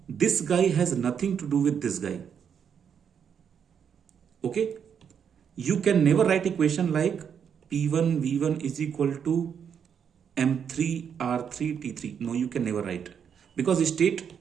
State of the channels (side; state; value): left; quieter; 7.7 dB